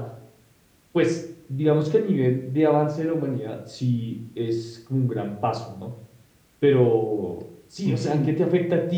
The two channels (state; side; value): identical; both; correlation 1.00